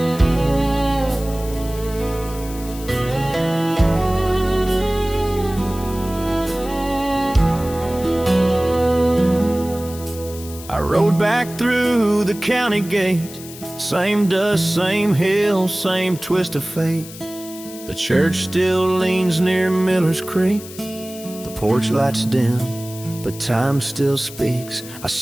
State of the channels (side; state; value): left; noise; hiss, 15 dB below the sound